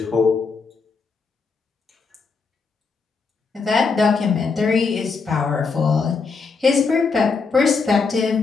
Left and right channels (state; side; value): quieter; right; 4.8 dB